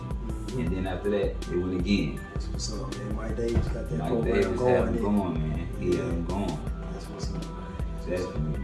And then after that, they went again. That's what's up, man. Mike Davis got that Mike program Davis had going. them going, man. He had them going. That's what's up, man. Definitely,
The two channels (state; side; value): identical; both; correlation 1.00